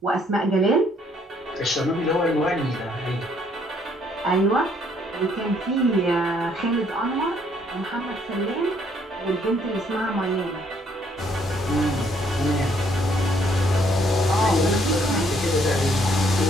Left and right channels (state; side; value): normal; both; correlation 0.67